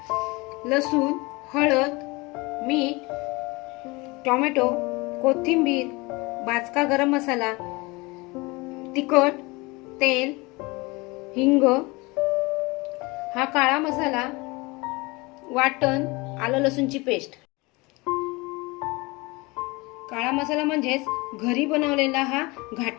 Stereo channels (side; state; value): right; quieter; 24.5 dB